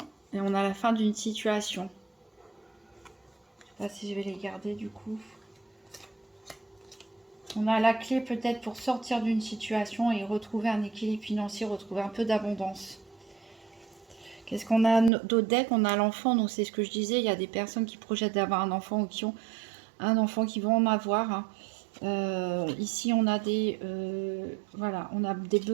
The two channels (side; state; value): left; drops out; at 15.1 s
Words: Et on a la fin d'une situation. Je ne sais pas si je vais les garder du coup. On a la clé peut-être pour sortir d'une situation et retrouver un équilibre financier, retrouver un peu d'abondance. Qu'est-ce qu'on a d'autre deck? On a l'enfant, donc c'est ce que je disais. Il y a des personnes qui projettent d'avoir un enfant ou qui ont un enfant qui vont en avoir. Hein. Ici, on a voilà, on a des